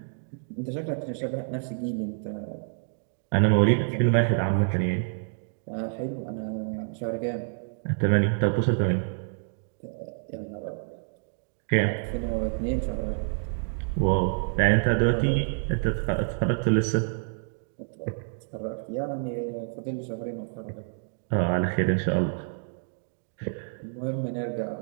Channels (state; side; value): silent; left; digital silence